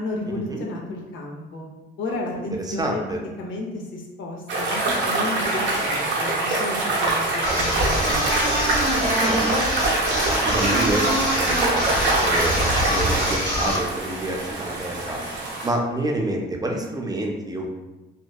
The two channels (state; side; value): normal; both; correlation 0.20